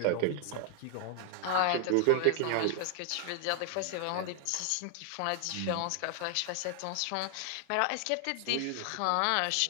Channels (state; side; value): different; both; correlation 0.00